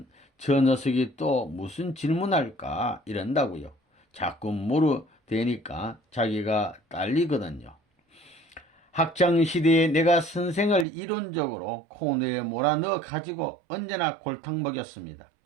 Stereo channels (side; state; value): left; drops out; at 10.9 s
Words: 저 녀석이 또 무슨 질문할까 이런다고요. 자꾸 물어대니까 자기가 딸리거든요. 학창시대에 내가 선생을 이론적으로 코너에 몰아넣어 가지고 언제나 골탕 먹였습니다.